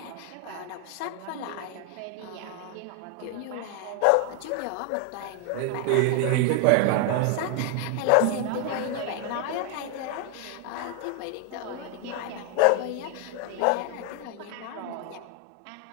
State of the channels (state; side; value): different; both; correlation 0.01